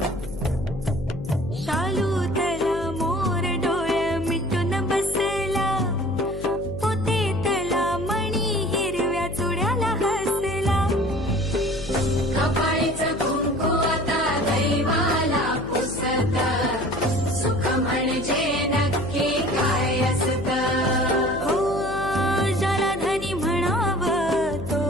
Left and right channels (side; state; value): left; noise; hum, 10 dB below the sound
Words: शालू तला मोर डोळे मिटून बसला पोते तला मणी हिरव्या चुड्याला हसला कपाळीचं कुंकू आता दैवाला पुसत सुख म्हणजे नक्की काय असत हो ज्याला धनी म्हणावं तो